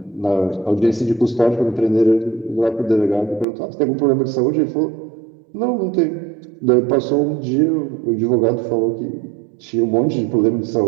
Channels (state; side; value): drops out; left; at 3.5 s